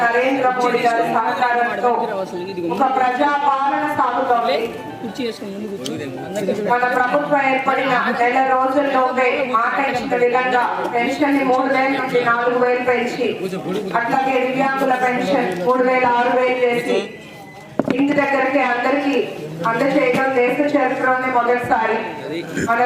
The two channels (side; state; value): both; identical; correlation 1.00